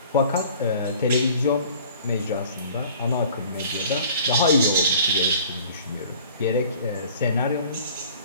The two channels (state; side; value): inverted; both; correlation -0.49